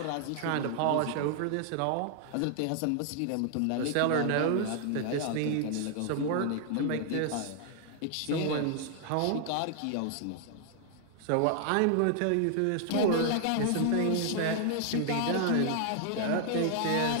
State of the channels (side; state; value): both; different; correlation 0.00